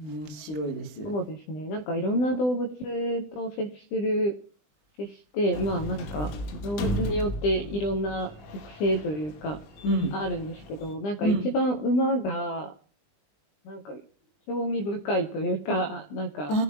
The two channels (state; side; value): late; right; 20 ms